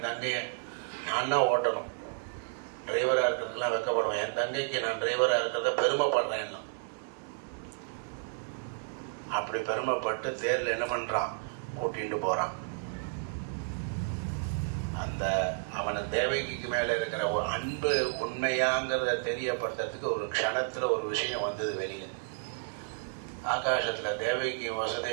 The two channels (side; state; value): left; silent; digital silence